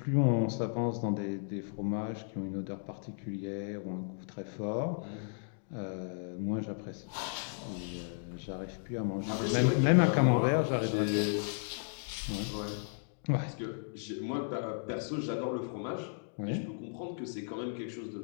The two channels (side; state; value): right; silent; digital silence